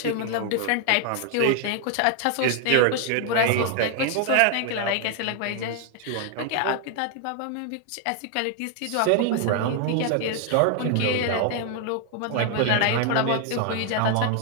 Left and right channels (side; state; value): both; different; correlation 0.00